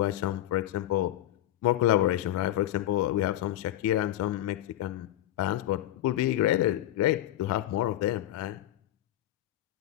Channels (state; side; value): quieter; right; 13.6 dB